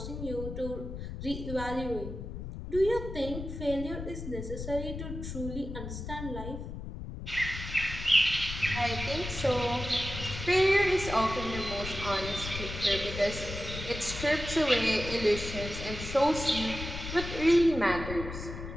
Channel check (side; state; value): left; noise; rumble, 8 dB below the sound